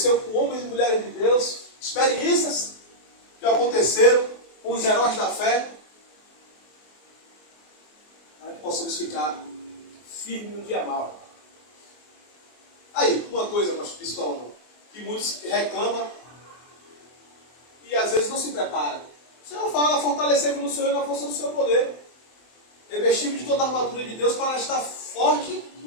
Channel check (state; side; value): late; right; 24 ms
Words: com homens e mulheres de Deus, experiências que aconteceram com os heróis da fé, para que possamos ficar firmes no dia mau. Aí, uma coisa, pastor Pistola, que muitos reclamam e às vezes não se preparam. O Senhor fala: fortalecei-vos no Senhor e na força do seu poder. Revestimos de toda a armadura de Deus para estar forte